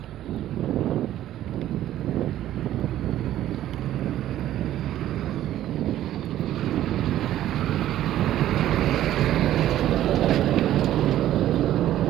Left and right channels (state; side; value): quieter; left; 12.9 dB